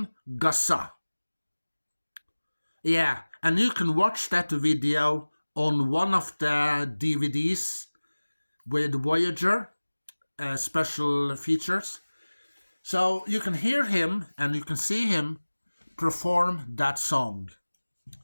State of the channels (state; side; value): inverted; both; correlation -1.00